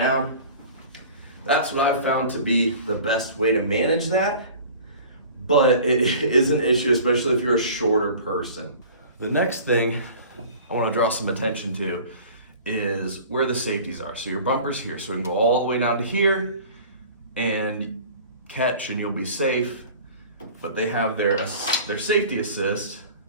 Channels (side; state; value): both; inverted; correlation -0.43